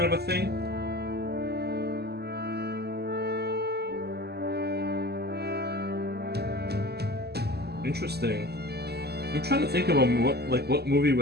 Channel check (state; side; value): late; left; 0.47 ms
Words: of a thing. Interesting. I'm trying to think of what movie